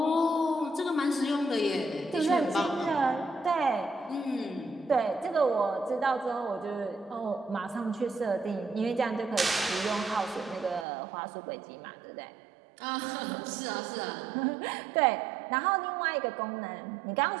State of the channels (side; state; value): left; drops out; at 10.9 s